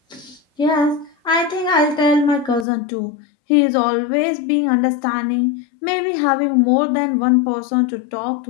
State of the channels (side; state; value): right; drops out; at 2.7 s